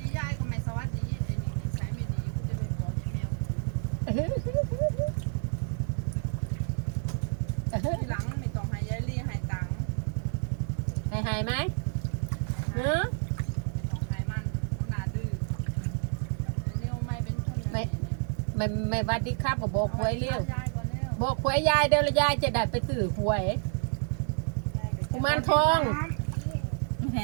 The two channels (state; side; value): silent; left; digital silence